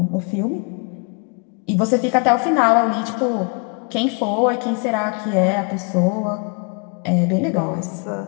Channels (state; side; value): quieter; right; 36.8 dB